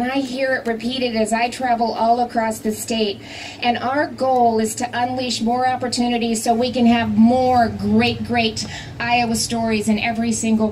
I hear it repeated as I travel all across the state. And our goal is to unleash more opportunities so we can have more great Iowa stories in every single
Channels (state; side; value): identical; both; correlation 1.00